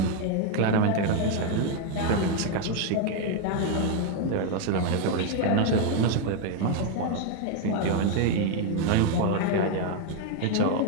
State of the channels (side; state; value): both; different; correlation 0.01